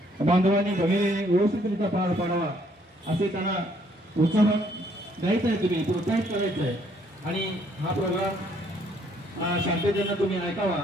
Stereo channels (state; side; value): normal; both; correlation 0.66